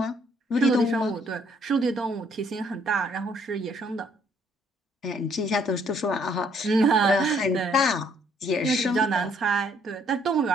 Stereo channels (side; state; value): both; normal; correlation 0.65